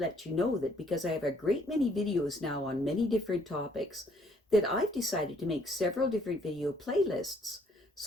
you know that because I have a great many videos now on many different topics, that I've decided to make several different video playlists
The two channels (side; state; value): both; normal; correlation 0.65